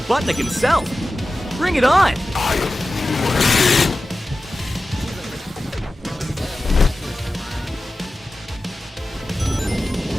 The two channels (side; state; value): both; normal; correlation 0.95